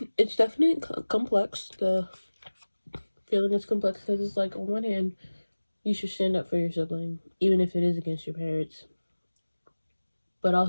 it's definitely complex. The feeling is complex because it's like, on one hand, you should stand up for your sibling, even if it is against your parents. But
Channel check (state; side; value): inverted; both; correlation -1.00